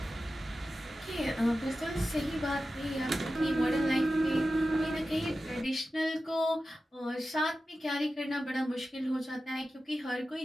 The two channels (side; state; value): both; normal; correlation 0.93